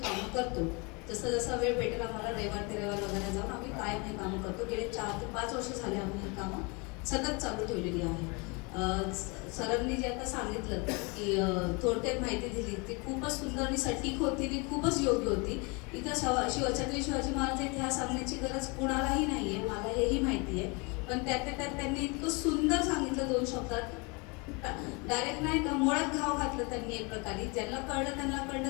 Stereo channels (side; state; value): right; quieter; 29.7 dB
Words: कामं करतो. जसं जसा वेळ भेटेल आम्हाला रविवार ते रविवार वगैरे जाऊन आम्ही कायम हे कामं करतो. गेले 4 ते 5 वर्ष झाले आम्ही ही कामं सतत चालू ठेवलेली आहे. सरांनी जे आता सांगितलं की थोडक्यात माहिती दिली ती खूपच सुंदर आणि सटीक होती आणि खूपच योग्य होती. इथं छत्रपती शिवाजी महाराज इतिहास सांगण्याची गरज कुणालाही नाही आहे, मला हेही माहिती आहे. पण त्यात त्यांनी इतकं सुंदर सांगितलं 2 शब्दात, डायरेक्ट नाही का मुळात घाव घातलं त्यांनी एक प्रकारे. ज्यांना कळलं त्यांना कळलं,